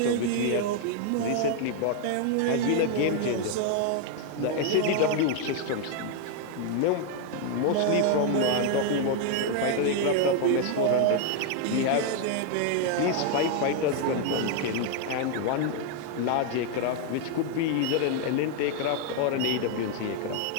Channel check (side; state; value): both; different; correlation 0.00